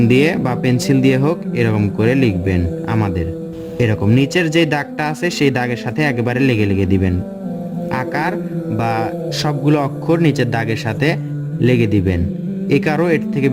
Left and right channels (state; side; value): identical; both; correlation 1.00